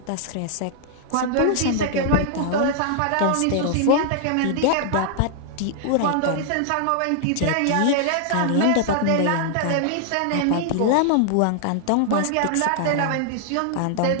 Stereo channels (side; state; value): both; different; correlation -0.01